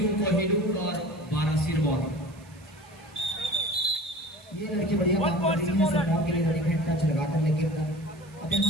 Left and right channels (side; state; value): right; noise; hiss, 27 dB below the sound